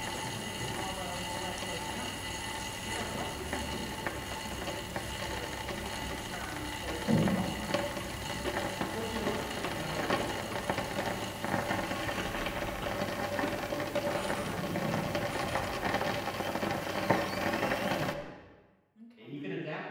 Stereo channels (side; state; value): both; identical; correlation 1.00